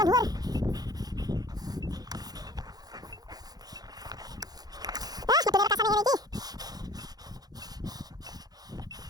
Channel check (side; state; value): left; late; 0.19 ms